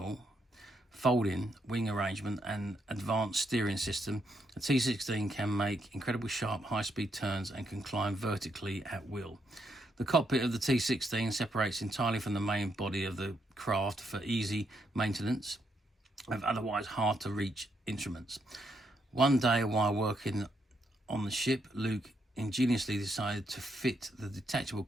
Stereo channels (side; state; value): both; normal; correlation 0.77